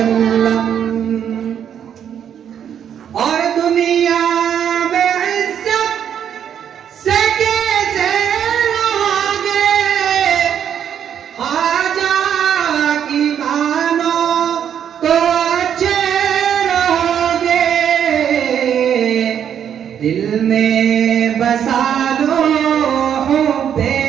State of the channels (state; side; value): quieter; left; 8.9 dB